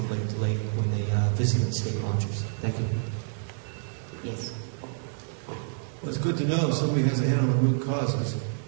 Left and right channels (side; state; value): left; silent; 58 dB below the other